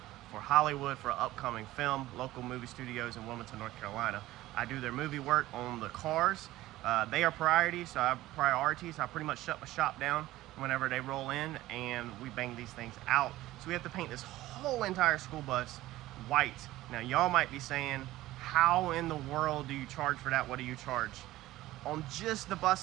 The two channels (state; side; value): quieter; left; 16.4 dB